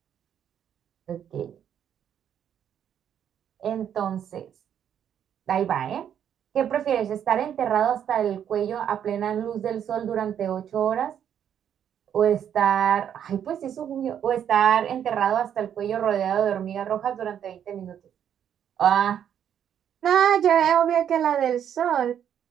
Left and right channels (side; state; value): left; quieter; 9.2 dB